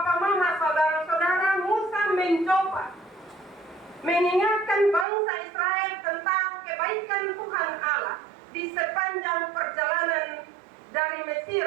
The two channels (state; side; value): drops out; left; at 5.1 s